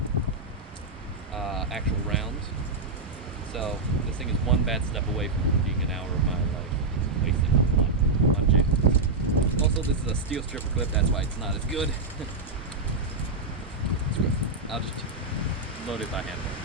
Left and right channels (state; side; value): quieter; left; 3.4 dB